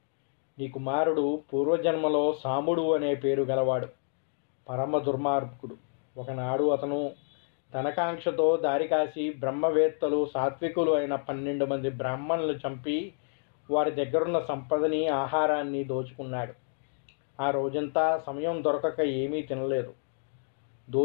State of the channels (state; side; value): silent; right; digital silence